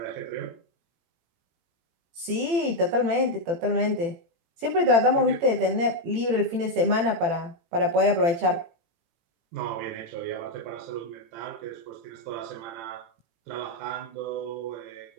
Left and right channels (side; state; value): left; late; 18 ms